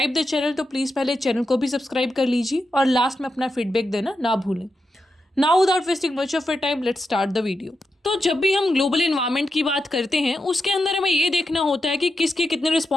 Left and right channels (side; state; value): both; normal; correlation 0.87